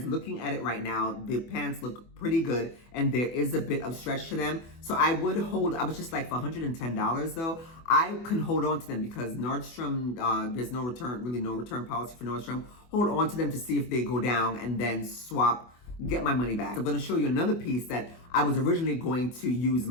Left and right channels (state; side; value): late; right; 24 ms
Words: looking at it right now, the pants look pretty good and there is a bit of stretch to them. So I was just like for $110 though, I can hold on to them because Nordstrom, there's no return policy for Nordstrom. Hold on to them to see if they go down and then swap, get my money back. I'm gonna show you another piece that I was originally going to use